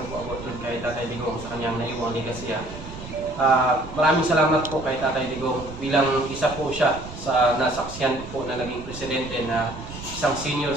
ko about kay Tatay Digong sa kanyang naiwang legacy. Maraming salamat po kay Tatay Digong bilang isa po siya sa nasaksiyan po na naging presidente na isang senior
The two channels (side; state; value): right; noise; rumble, 12 dB below the sound